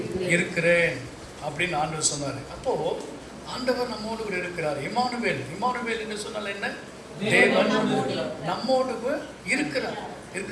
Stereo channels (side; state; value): both; identical; correlation 1.00